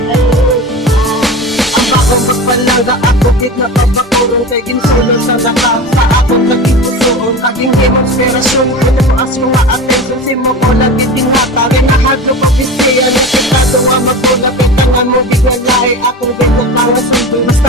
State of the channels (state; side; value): normal; both; correlation 0.30